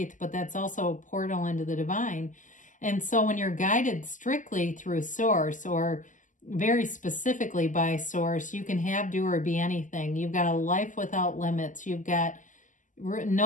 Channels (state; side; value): late; right; 0.37 ms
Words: but that's also a portal into the divine. And so when you're guided strictly through Source, or very specifically by Source, you can have, do, or be anything. You've got a life without limits. You've got